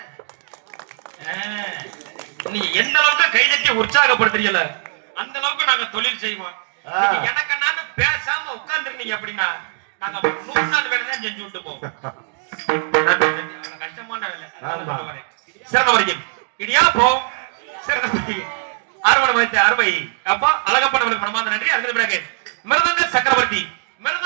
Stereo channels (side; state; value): left; silent; digital silence